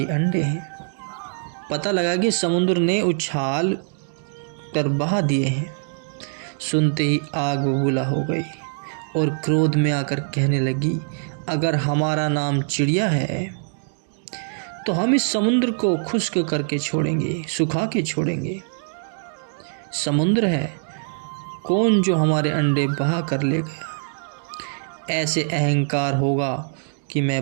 अंडे हैं। पता लगा कि समुद्र ने उछाल कर बहा दिए हैं। सुनते ही आग बबूला हो गई और क्रोध में आकर कहने लगी, अगर हमारा नाम चिड़िया है तो हम इस समुद्र को खुश्क करके छोड़ेंगे, सुखा के छोड़ेंगे। समुद्र है कौन जो हमारे अंडे बहा कर ले गया। ऐसे अहंकार होगा कि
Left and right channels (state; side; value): silent; left; digital silence